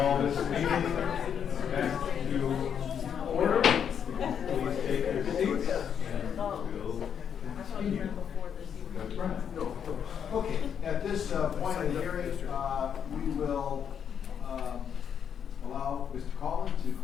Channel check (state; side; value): quieter; right; 8.0 dB